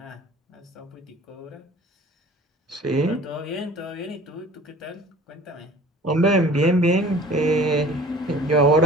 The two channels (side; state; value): both; normal; correlation 0.46